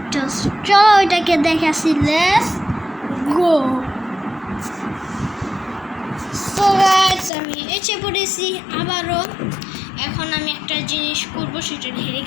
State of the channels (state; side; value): drops out; right; at 7.3 s